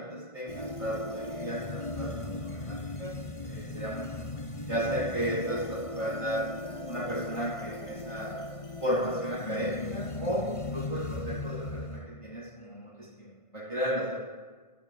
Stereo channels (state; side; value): late; right; 1.5 ms